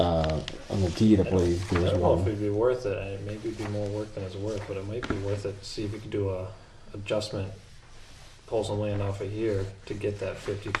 deed, I believe. I There's don't know if one. it'd be worth it. It maybe it'd be more work than it's worth, but it might be worth it to see if we could do a adjustment, pull some land off of here to get that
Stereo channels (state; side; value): identical; both; correlation 1.00